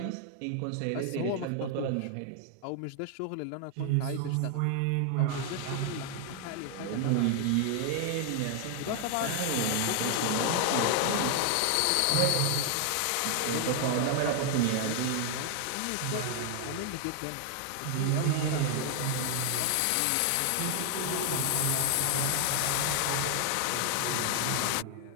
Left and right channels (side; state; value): both; different; correlation 0.00